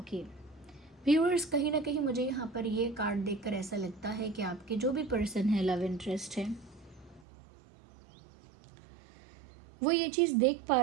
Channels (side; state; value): left; drops out; at 7.2 s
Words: Viewers, कहीं ना कहीं मुझे यहाँ पर ये कार्ड देखकर ऐसा लगता है कि आपके जो भी पर्सन है, लव इंटरेस्ट है, वो ये चीज़ देख पा